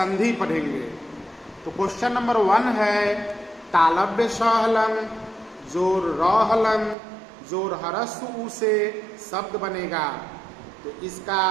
पढ़ेंगे। तो क्वेश्चन नंबर 1 है तालव्य स हलंग जोर र हलंग जोर हरस्व उ से शब्द बनेगा। तो इसका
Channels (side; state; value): left; drops out; at 7.0 s